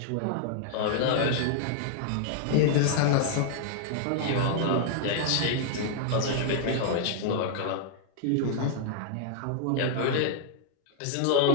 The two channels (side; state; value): both; different; correlation 0.00